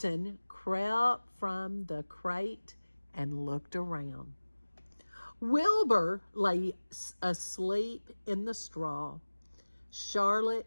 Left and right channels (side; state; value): both; inverted; correlation -1.00